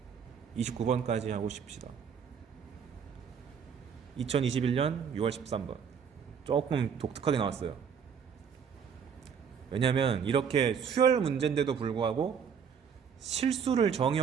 29번까지 하고 싶시다. 2021년 6월 13번 조금 독특하게 나왔어요. 왜냐면 이렇게 수열 문제인데도 불구하고 실수를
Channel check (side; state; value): left; quieter; 7.1 dB